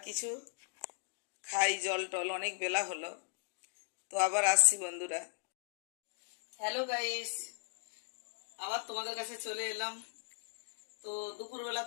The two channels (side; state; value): right; silent; digital silence